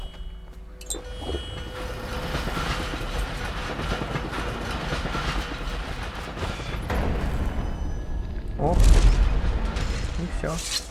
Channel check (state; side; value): identical; both; correlation 1.00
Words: Оп. И все.